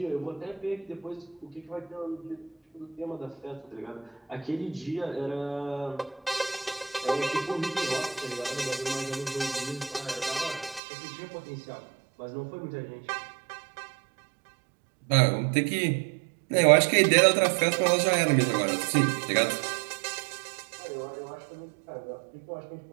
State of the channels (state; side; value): drops out; left; at 10.8 s